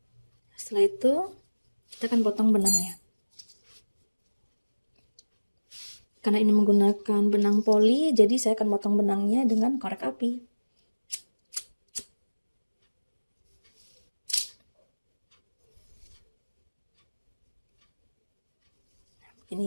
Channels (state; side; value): inverted; both; correlation -1.00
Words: Setelah itu, kita akan potong benangnya. Karena ini menggunakan benang poli, jadi saya akan potong benangnya dengan korek api. Ini